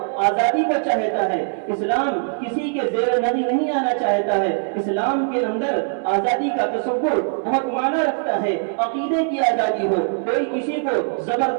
آزادی کو چاہتا ہے، اسلام کسی کے زیر نظر نہیں آنا چاہتا ہے، اسلام کے اندر آزادی کا تصور بہت معنی رکھتا ہے۔ عقیدے کی آزادی ہو، کوئی کسی کو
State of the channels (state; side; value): silent; left; 65 dB below the other